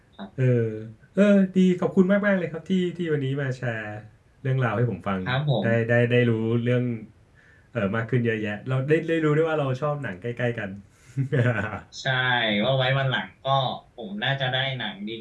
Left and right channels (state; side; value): identical; both; correlation 1.00